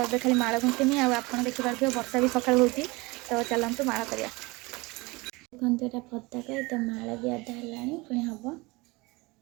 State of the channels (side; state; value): left; quieter; 24.1 dB